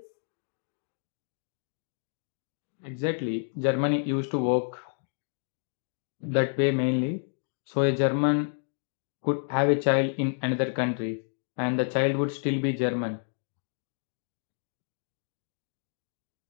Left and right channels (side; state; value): right; silent; digital silence